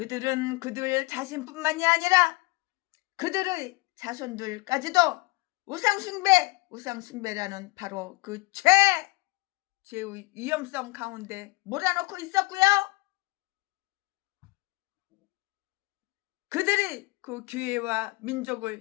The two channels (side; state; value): right; quieter; 22.9 dB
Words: 그들 자신뿐만이 아니라 그들의 자손들까지도 우상숭배라는 바로 그 죄의 위험성 가운데 몰아넣고 있었고요. 그들이 그 교회와